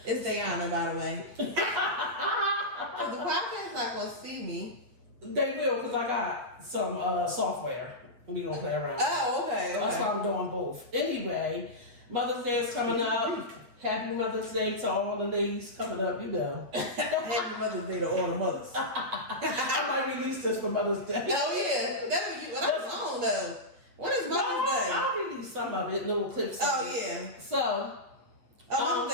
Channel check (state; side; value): late; left; 8.7 ms